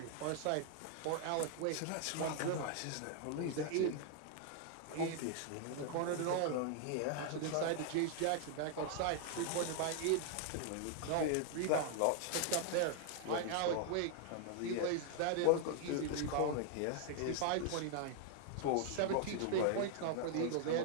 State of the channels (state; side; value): different; both; correlation 0.00